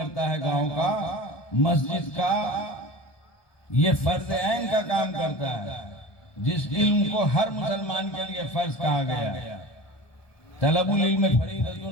है गांव का, मस्जिद का, ये फर्ज ऐन का काम करता है, जिस इल्म को हर मुसलमान के लिए फर्ज कहा गया। तलबुल इल्म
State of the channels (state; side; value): late; right; 1.2 ms